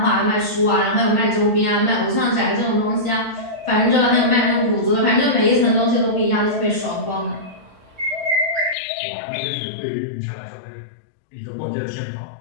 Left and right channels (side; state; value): right; drops out; at 8.8 s